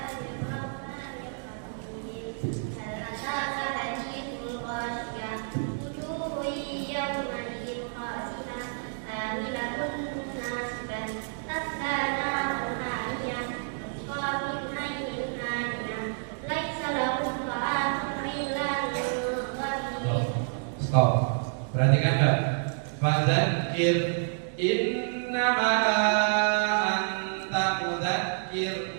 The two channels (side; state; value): left; silent; digital silence